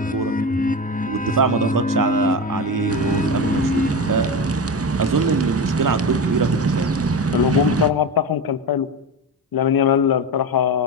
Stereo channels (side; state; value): both; normal; correlation 0.21